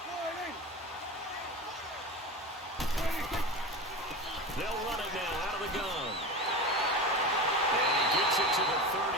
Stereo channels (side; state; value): both; normal; correlation 0.27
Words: They'll run it now out of the gun. And he gets it to the